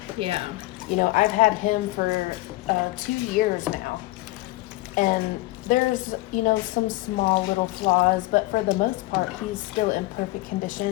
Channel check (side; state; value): right; quieter; 19.7 dB